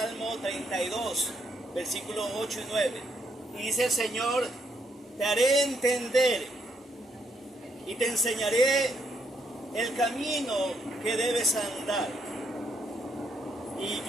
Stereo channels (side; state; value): both; normal; correlation 0.75